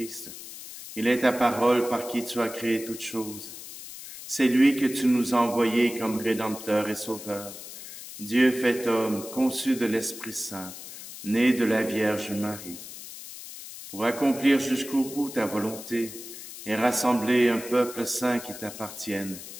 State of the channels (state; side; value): noise; left; hiss, 13 dB below the sound